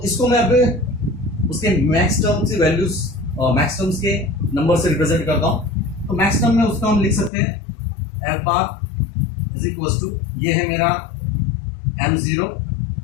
इसको मैं अब उसके मैक्स टर्म से वैल्यूज और मैक्स टर्म्स के नंबर से रिप्रेजेंट करता हूं। तो मैक्स टर्म में उसका हम लिख सकते हैं f bar is equal to, ये है मेरा m0,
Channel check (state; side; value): drops out; right; at 7.3 s